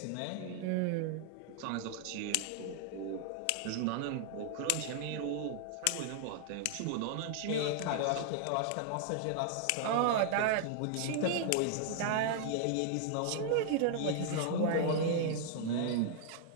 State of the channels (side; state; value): both; different; correlation 0.00